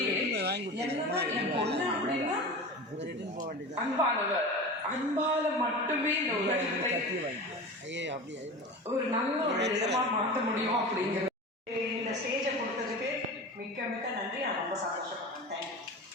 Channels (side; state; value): both; normal; correlation 0.31